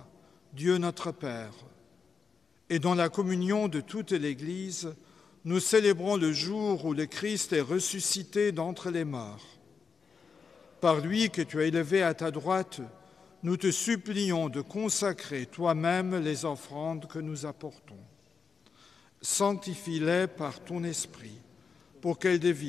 Dieu notre Père. Et dans la communion de toute l'Église, nous célébrons le jour où le Christ est ressuscité d'entre les morts. Par lui que tu as élevé à ta droite, nous te supplions de consacrer toi-même les offrandes que nous apportons. Sanctifie-les par ton esprit, pour qu'elles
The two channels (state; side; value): quieter; right; 5.5 dB